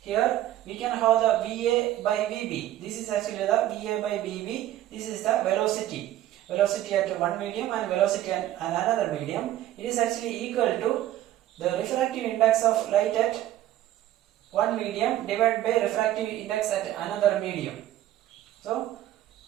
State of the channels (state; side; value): quieter; left; 13.3 dB